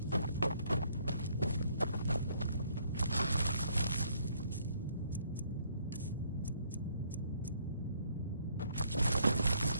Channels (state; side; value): inverted; both; correlation -0.66